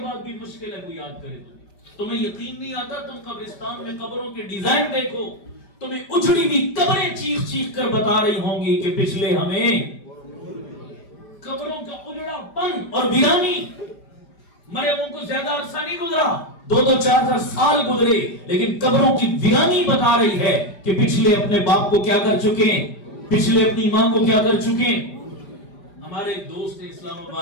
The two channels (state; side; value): late; right; 5.1 ms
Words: بعد بھی مشکل ہے کوئی یاد کرے. تمہیں یقین نہیں آتا؟ تم قبرستان میں قبروں کے ڈیزائن دیکھو، تمہیں اجڑی ہوئی قبریں چیخ چیخ کر بتا رہی ہوں گی کہ پچھلے ہمیں قبروں کا اجڑا پن اور ویرانی. مرے ان کو زیادہ عرصہ نہیں گزرا، 2-4 سال گزرے، لیکن قبروں کی ویرانی بتا رہی ہے کہ پچھلے اپنے باپ کو کیا کر چکے ہیں، پچھلے اپنی ماں کو کیا کر چکے ہیں. ہمارے ایک دوست ہیں اسلام